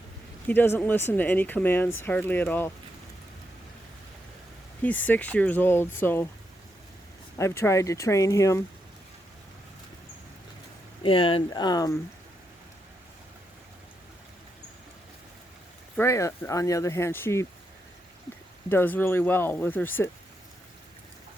listen to any commands hardly at all. He's 6 years old, so I've tried to train him, and Freya, on the other hand, she does really well with her sit.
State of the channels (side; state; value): both; normal; correlation 0.82